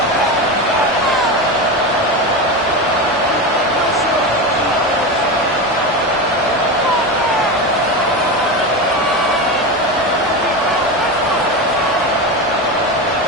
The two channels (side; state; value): both; normal; correlation 0.20